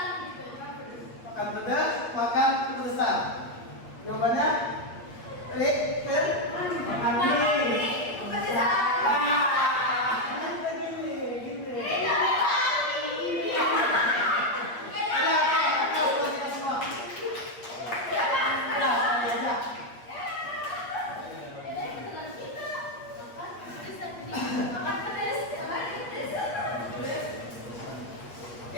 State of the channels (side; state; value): right; late; 8.5 ms